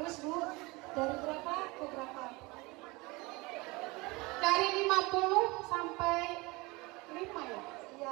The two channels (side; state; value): left; quieter; 24.2 dB